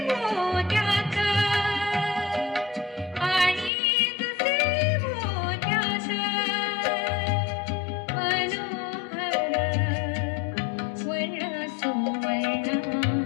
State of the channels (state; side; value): drops out; right; at 3.7 s